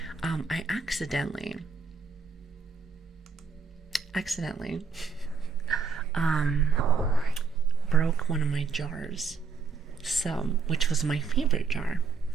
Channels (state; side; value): quieter; left; 5.0 dB